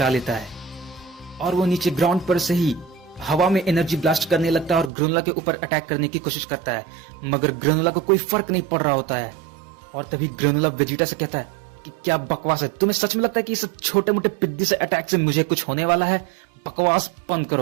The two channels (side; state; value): left; drops out; at 4.9 s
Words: लेता है और वो नीचे ग्राउंड पर से ही हवा में एनर्जी ब्लास्ट करने लगता है और ग्रेनुला के ऊपर अटैक करने की कोशिश करता है, मगर ग्रेनुला को कोई फर्क नहीं पड़ रहा होता है। और तभी ग्रेनुला वेजिटा से कहता है कि क्या बकवास है, तुम्हें सच में लगता है कि इस छोटे मोटे पिद्दी से अटैक से मुझे कुछ होने वाला है? बकवास बंद